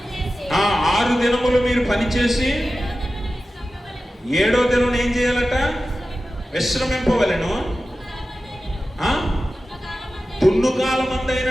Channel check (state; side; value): normal; both; correlation 0.94